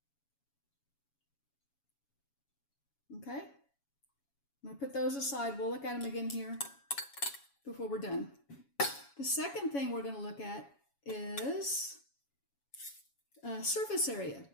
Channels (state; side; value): late; right; 7.2 ms